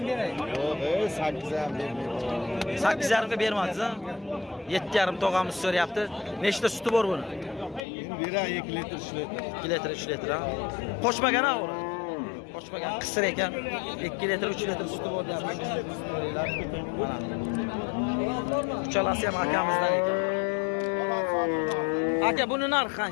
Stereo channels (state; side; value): drops out; right; at 7.9 s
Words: 8,5 ga bermadingiz ha? 7,5 tog'amiz so'rayapti. Nechta suti bor buni? bira 2 litr 3 litr. 2 litr 3 litr ha. Qo'shmagan ha uni. Qo'shmagan qisir ekan. 2 litr 3 litr suti bor deyapti. Mana. Uchalasi ham akamizdan ekan. Aka buni narxi